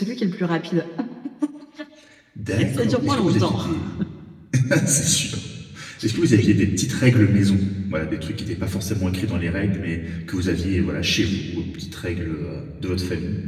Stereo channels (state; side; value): identical; both; correlation 1.00